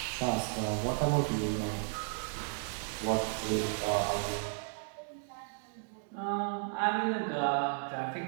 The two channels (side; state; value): left; silent; digital silence